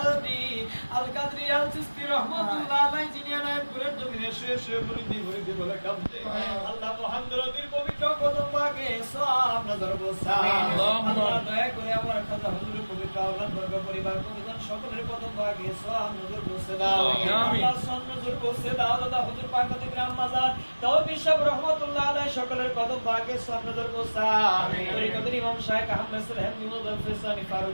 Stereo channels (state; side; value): inverted; both; correlation -1.00